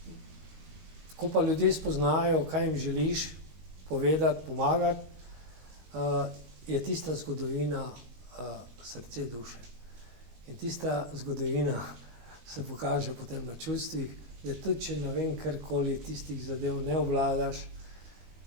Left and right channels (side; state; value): left; late; 19 ms